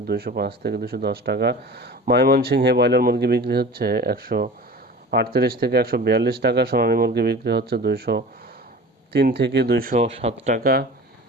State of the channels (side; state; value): both; normal; correlation 0.38